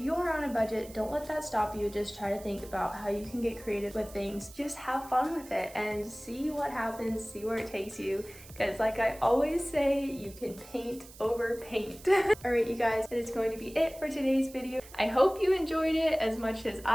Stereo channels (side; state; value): right; noise; hiss, 19 dB below the sound